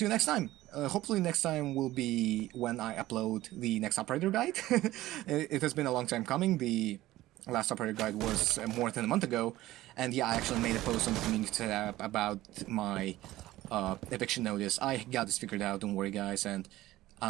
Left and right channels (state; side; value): quieter; left; 16.2 dB